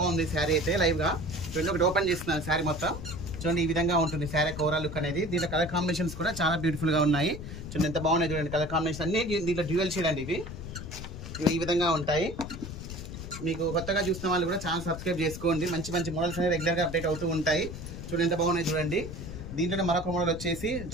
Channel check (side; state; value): left; noise; rumble, 9 dB below the sound